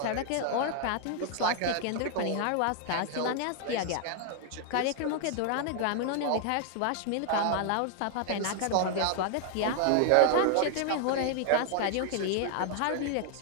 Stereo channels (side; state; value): both; different; correlation 0.00